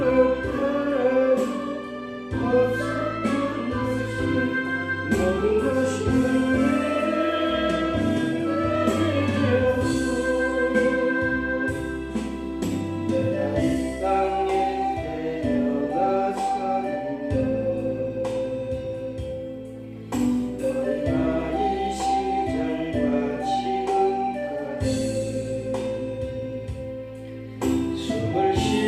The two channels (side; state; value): both; identical; correlation 1.00